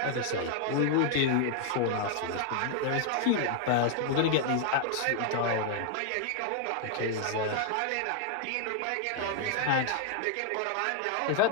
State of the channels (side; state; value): both; different; correlation 0.00